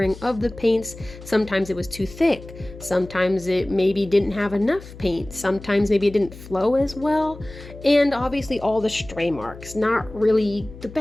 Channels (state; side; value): noise; left; hum, 16 dB below the sound